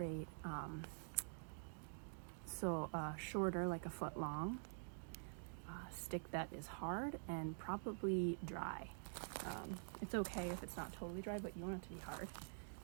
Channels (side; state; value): left; silent; digital silence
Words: Shorter, like a foot long, stick that is hard and probably dry. It's okay if it's not totally dry, but you want it to be hard.